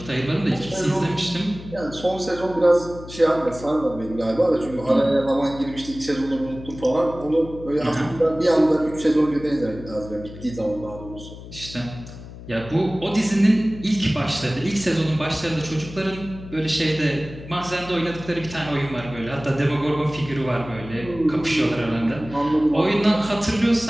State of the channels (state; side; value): noise; left; hum, 14 dB below the sound